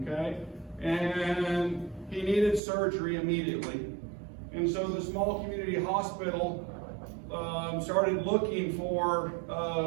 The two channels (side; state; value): left; drops out; at 2.6 s